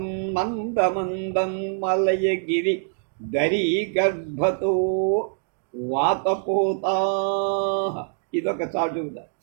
మందమందం మలయగిరి దరీ గర్భతో వాతపోతా. ఇదొక చాటుద.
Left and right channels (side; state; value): left; silent; 62 dB below the other